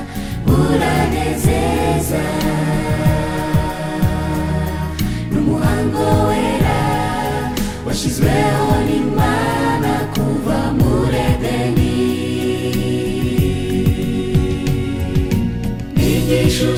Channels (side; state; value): both; identical; correlation 1.00